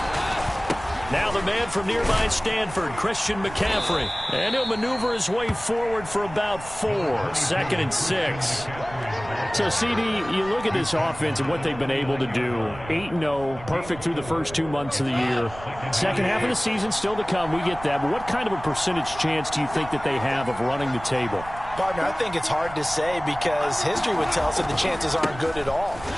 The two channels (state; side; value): noise; right; rumble, 15 dB below the sound